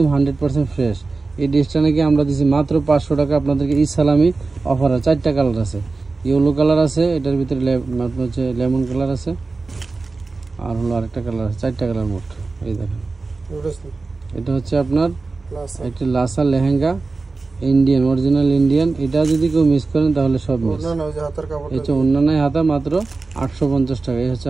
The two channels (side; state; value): left; quieter; 3.8 dB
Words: 100% ফ্রেশ। এই ড্রেসটা নাকি আমরা দিচ্ছি মাত্র 500 টাকা আপনাদেরকে। ঈদ সালামি অফার। 4টা কালার আছে, ইয়েলো কালার আছে, এটার ভিতরে আপনার হচ্ছে লেমন কালার আছে, আর হলো আরেকটা কালার আছে। 4টা কালার মোট। এই দেখেন, এটা হচ্ছে আপনার একটা Lhasa lehenga, Indian, original Indian. এটা যদি কেউ মিস করেন তাহলে সব মিস। এই হচ্ছে অন্যান্য হাতা, মাত্র 850 টাকা। এই হচ্ছে